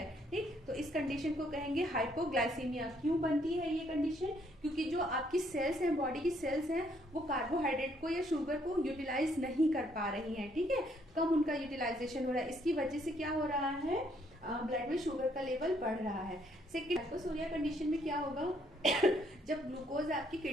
ठीक, तो इस कंडीशन को कहेंगे हाइपोग्लाइसीमिया। क्यों बनती है ये कंडीशन, क्योंकि जो आपकी सेल्स हैं, बॉडी की सेल्स हैं, वो कार्बोहाइड्रेट को या शुगर को यूटिलाइज नहीं कर पा रही हैं, ठीक है, कम उनका यूटिलाइजेशन हो रहा है, इसकी वजह से क्या हो रहा है, ब्लड में शुगर का लेवल बढ़ रहा है। सेकेंड, हाइपोसोरिया कंडीशन में क्या होगा जब ग्लूकोज आपकी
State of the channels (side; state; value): both; normal; correlation 0.69